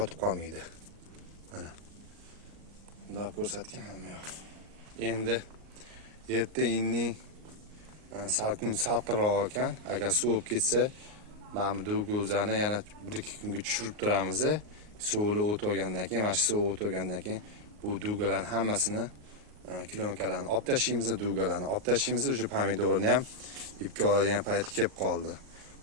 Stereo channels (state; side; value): late; left; 38 ms